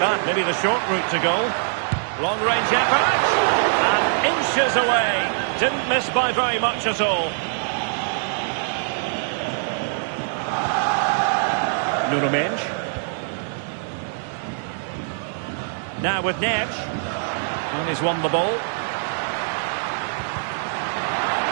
maybe the short route to goal. Long-range effort. And inches away. Didn't miss by very much at all. Nuno Mendes. Now with Neves. And he's won the ball.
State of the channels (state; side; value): silent; left; digital silence